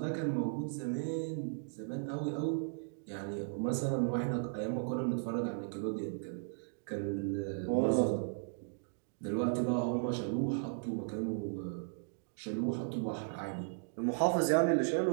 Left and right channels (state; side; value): silent; left; digital silence